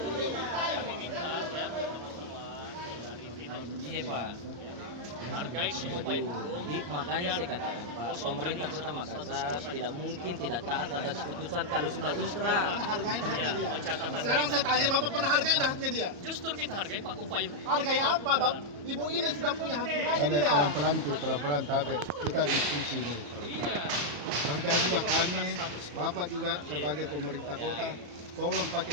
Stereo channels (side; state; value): left; late; 34 ms